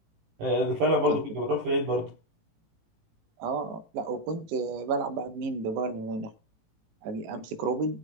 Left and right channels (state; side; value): late; left; 18 ms